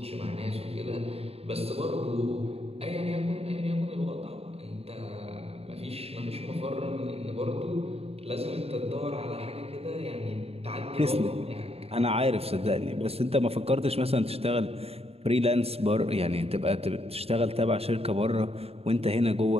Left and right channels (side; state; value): left; late; 0.29 ms